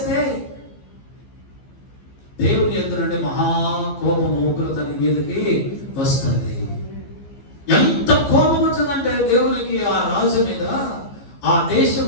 దేవుని ఎదురు నుండి మహాకోపము, ఉగ్రత నీ మీదకి వస్తుంది. ఎంత కోపం వచ్చిందంటే దేవునికి ఆ రాజు మీద, ఆ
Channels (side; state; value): right; late; 15 ms